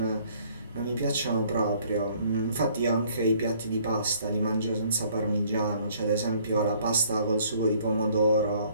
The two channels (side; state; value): both; inverted; correlation -0.60